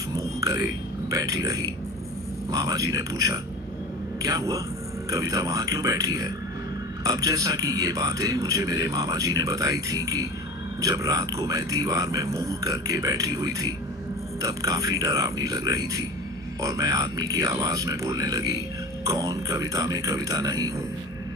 मुंह करे बैठी रही। मामा जी ने पूछा, क्या हुआ? कविता वहां क्यों बैठी है? अब जैसा कि ये बातें मुझे मेरे मामा जी ने बताई थी कि जब रात को मैं दीवार में मुंह करके बैठी हुई थी तब काफी डरावनी लग रही थी और मैं आदमी की आवाज में बोलने लगी, कौन? कविता में कविता नहीं हूँ।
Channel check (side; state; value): right; noise; hum, 21 dB below the sound